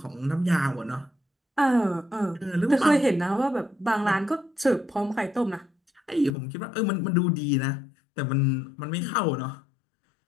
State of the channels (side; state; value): right; drops out; at 6.4 s